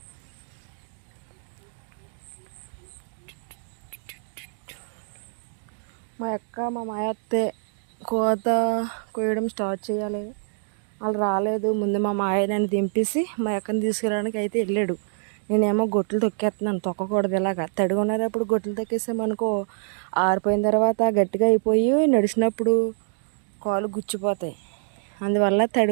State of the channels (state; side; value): silent; left; digital silence